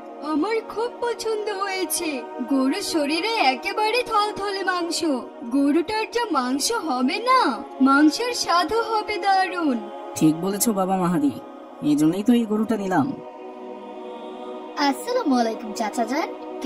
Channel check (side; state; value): both; identical; correlation 1.00